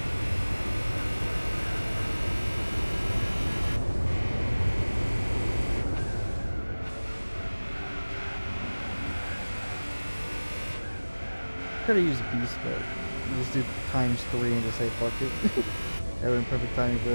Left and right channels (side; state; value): both; inverted; correlation -1.00